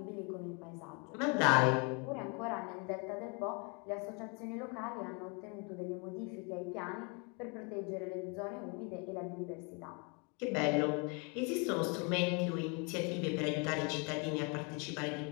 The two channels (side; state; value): right; quieter; 33.5 dB